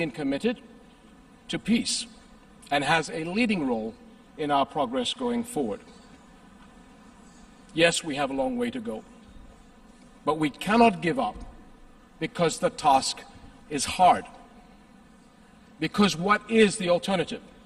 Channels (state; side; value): identical; both; correlation 1.00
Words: committed to peace and has a leading role in our progress going forward. Yes, we have a long way to go, but we cannot give up because the task is hard. Because what is the alternative?